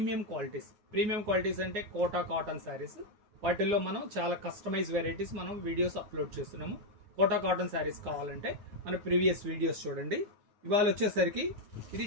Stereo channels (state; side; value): late; left; 9.5 ms